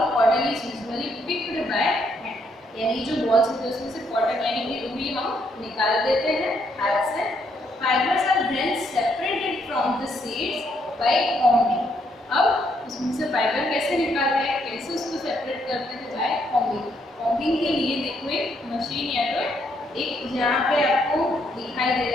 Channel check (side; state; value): both; normal; correlation 0.73